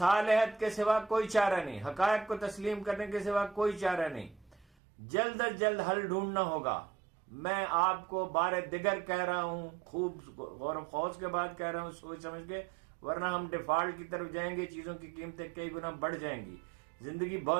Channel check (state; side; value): drops out; left; at 4.7 s